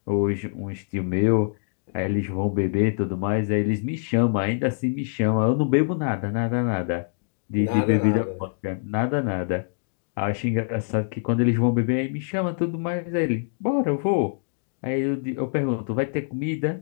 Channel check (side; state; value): right; silent; digital silence